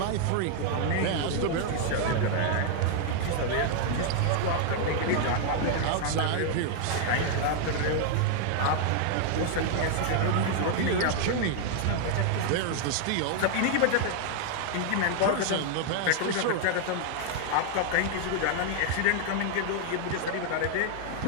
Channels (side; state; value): both; different; correlation 0.00